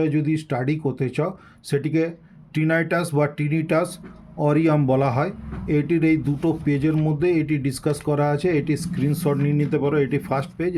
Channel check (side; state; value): both; identical; correlation 1.00